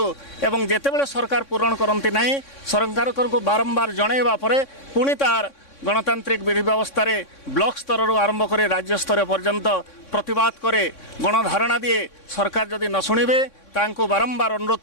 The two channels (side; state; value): right; late; 3.6 ms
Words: एवं जेतेबेले सरकार पूरण करंती नहीं सरकार को बारंबार जणाइबा परे पुणी तार गणतांत्रिक विधि व्यवस्था रे ब्लॉक स्तर आरंभ करे राज्य स्तर पर्यंत प्रतिवाद करे गणधारणा दिए सरकार जदि न शुणिबे तांको बारंबार अनुरोध